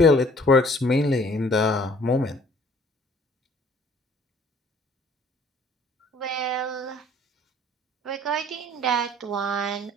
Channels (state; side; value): normal; both; correlation 0.56